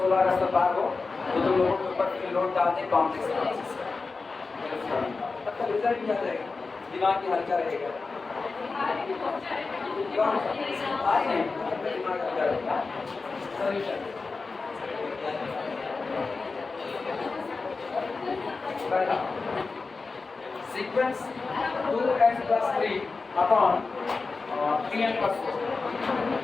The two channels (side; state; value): right; quieter; 4.1 dB